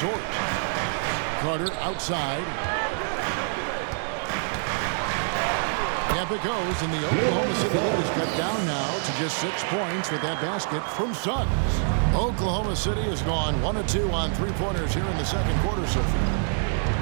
Carter outside. Yep, it goes, and the Oklahoma City lead is cut down now to just 6 points with that basket from Suggs. Oklahoma City has gone 1 of 2 on three-pointers here in the second quarter so far.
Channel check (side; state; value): left; silent; 61 dB below the other